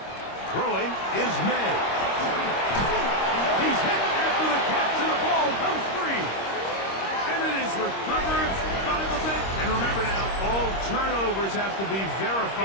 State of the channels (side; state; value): right; late; 26 ms